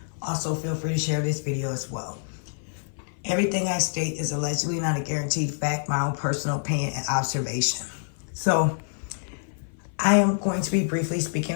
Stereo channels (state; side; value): silent; right; 55 dB below the other